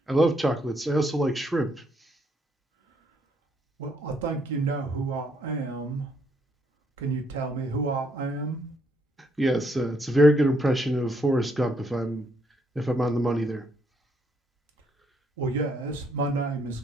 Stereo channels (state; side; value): normal; both; correlation 0.72